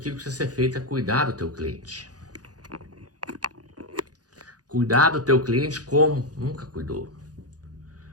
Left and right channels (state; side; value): late; left; 0.68 ms